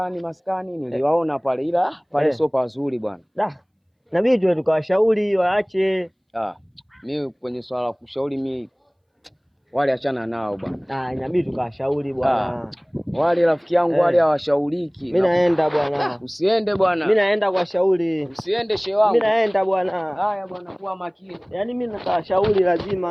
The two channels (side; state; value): both; identical; correlation 1.00